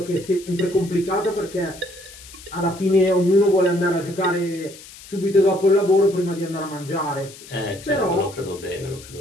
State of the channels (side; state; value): left; noise; hiss, 18 dB below the sound